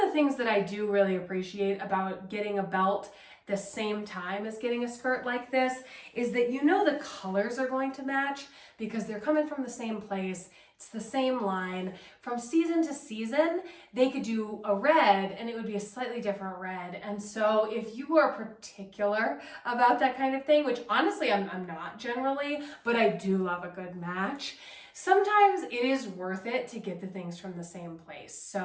the things that I do really appreciate about getting a belt the same time as getting a skirt like this is that you know the colors are going to match because they're coming from the same place. It's the same line. From season to season, they could do a red and it would be a slightly different red. And so if you are particular about that kind of thing, which honestly I'm not generally, but I do love a good match, sometimes it is worth it to get the things from the same place.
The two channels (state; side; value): identical; both; correlation 1.00